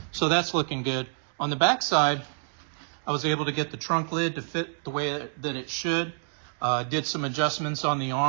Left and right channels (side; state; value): left; silent; digital silence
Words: So that's looking good. On the back side, I was able to get the trunk lid to fit the way that it should. Did some adjustments on the